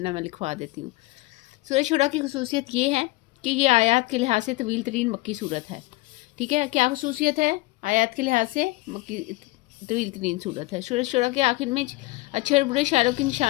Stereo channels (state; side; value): quieter; right; 21.3 dB